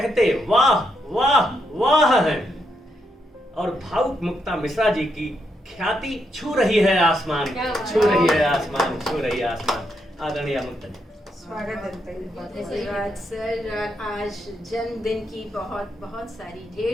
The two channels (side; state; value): both; normal; correlation 0.79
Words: वाह वाह वाह है, और भावुक मुक्ता मिश्रा जी की ख्याति छू रही है आसमान, छू रही है आसमान, छू रही है आसमान। आदरणीय मुक्ता जी, स्वागत है। धन्यवाद सर। आज जन्मदिन की बहुत बहुत सारी